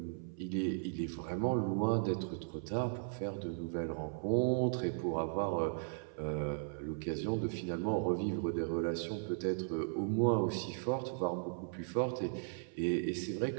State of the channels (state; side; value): silent; left; 53 dB below the other